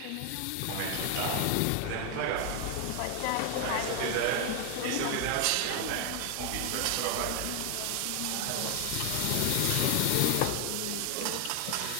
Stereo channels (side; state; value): both; different; correlation 0.00